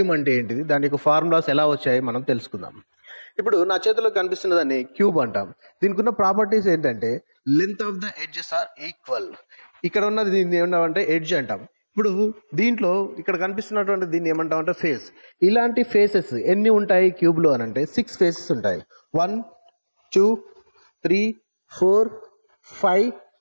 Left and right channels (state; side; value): inverted; both; correlation -1.00